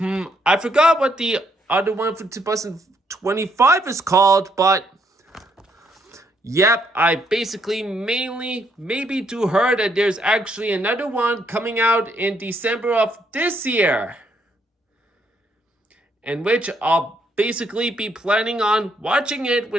I forgot what the other one for 2025 is called, but yep, I basically maybe do heard that there's actually another one coming out in December of this year, in which I'll basically be planning on watching it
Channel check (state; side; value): normal; both; correlation 0.72